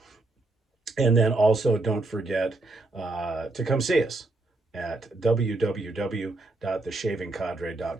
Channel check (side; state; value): left; quieter; 3.1 dB